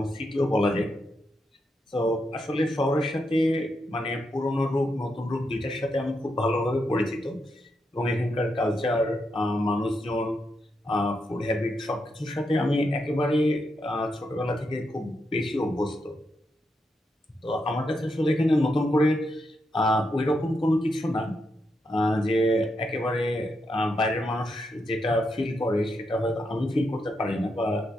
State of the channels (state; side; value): normal; both; correlation 0.83